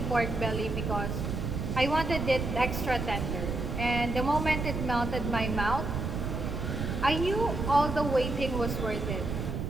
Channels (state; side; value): noise; right; rumble, 3 dB below the sound